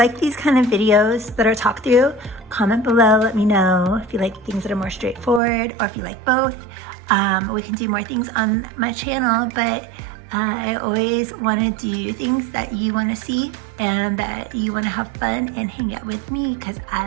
these kind of videos that are talk through, comment below, let me know if you like things that are more straightforward or if you like both. We can do more things on my channel, but I always want to do things that you want to see and that you want to have fun and hang out with me because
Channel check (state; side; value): drops out; left; at 5.4 s